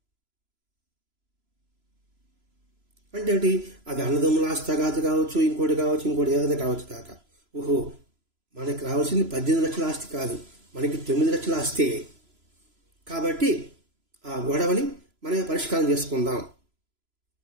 అంటే ఏంటి, అది అన్నదమ్ముల ఆస్తి కావచ్చు, ఇంకోటి ఏదైనా కావచ్చు కాక. ఓహో మనకి రావాల్సింది 18 లక్షల ఆస్తి కాదు, మనకి 9 లక్షల ఆస్తే. కాబట్టి ఆ గొడవని మనమే పరిష్కారం చేసుకుందాం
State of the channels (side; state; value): left; late; 3.0 ms